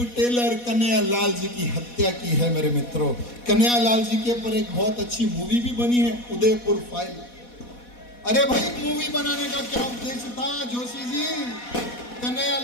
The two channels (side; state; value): right; late; 4.1 ms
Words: टेलर कन्हैयालाल जी की हत्या की है। मेरे मित्रों, कन्हैयालाल जी के ऊपर एक बहुत अच्छी मूवी भी बनी है, उदयपुर फाइल। अरे भाई, मूवी बनाने का क्या उद्देश्य था जोशी जी?